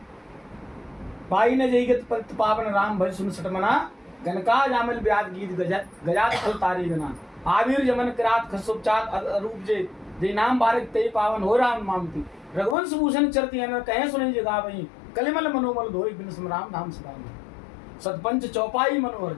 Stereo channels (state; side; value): drops out; right; at 12.8 s